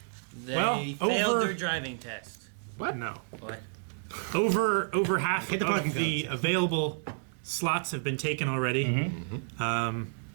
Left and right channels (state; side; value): silent; left; digital silence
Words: They failed their driving test. What? No. What? Over half Hit the parking of the codes. available slots have been taken already.